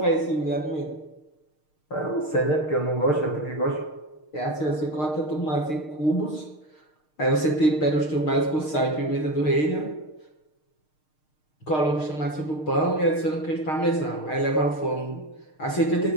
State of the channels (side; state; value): right; late; 6.6 ms